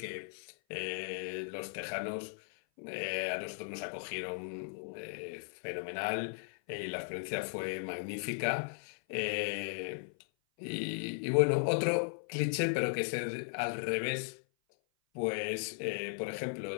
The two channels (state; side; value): silent; right; 53 dB below the other